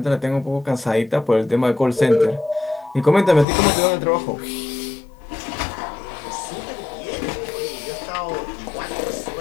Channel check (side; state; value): right; drops out; at 3.5 s